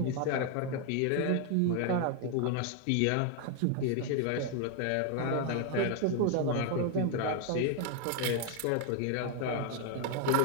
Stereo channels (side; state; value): both; different; correlation 0.01